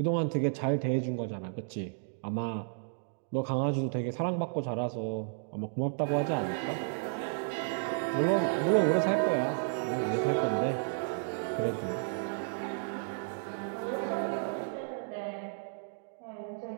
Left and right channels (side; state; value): left; silent; digital silence